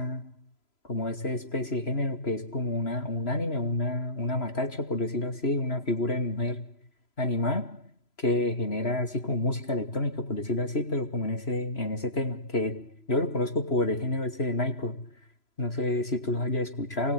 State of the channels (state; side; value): late; right; 3.0 ms